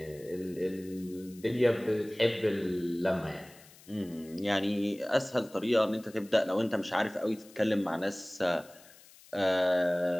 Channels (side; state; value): left; noise; hiss, 23 dB below the sound